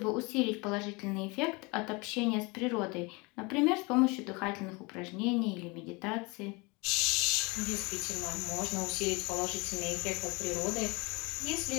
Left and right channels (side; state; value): right; quieter; 27.1 dB